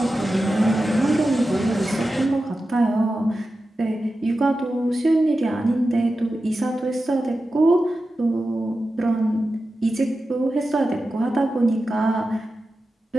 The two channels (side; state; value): both; normal; correlation 0.92